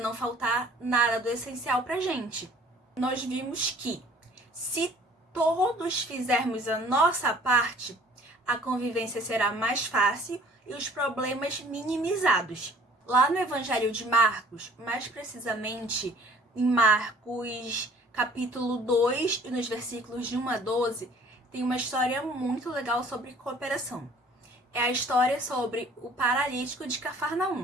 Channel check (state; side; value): normal; both; correlation 0.53